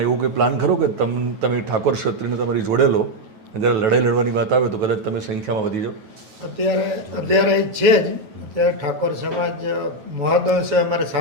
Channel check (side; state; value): left; late; 9.2 ms